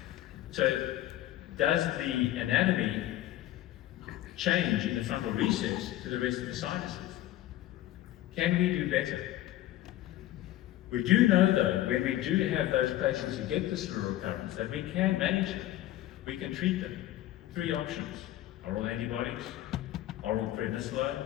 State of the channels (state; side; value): quieter; right; 14.5 dB